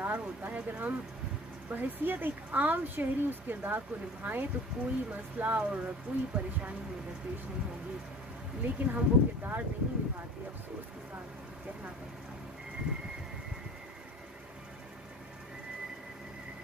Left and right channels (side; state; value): both; normal; correlation 0.43